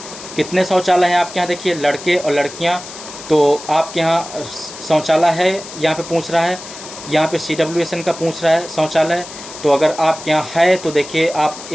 कितने शौचालय हैं आपके यहाँ, देखिए लड़के और लड़कियाँ, तो आपके यहाँ शौचालय है यहाँ पे पूछ रहा है, यहाँ पे CWSN का पूछ रहा है शौचालय। तो अगर आपके यहाँ है तो देखिए आप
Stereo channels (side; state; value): left; noise; hiss, 13 dB below the sound